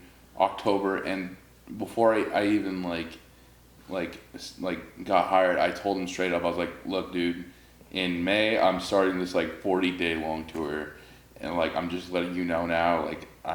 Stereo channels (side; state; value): both; identical; correlation 1.00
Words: October, and before I even got hired, I told him straight up, I was like, look, dude, in May, I'm starting this like 40-day long tour, and like, I'm just letting you know now, like,